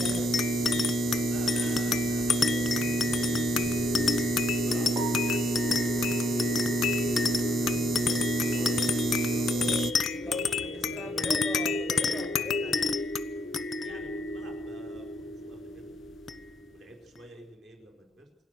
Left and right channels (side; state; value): both; normal; correlation 0.73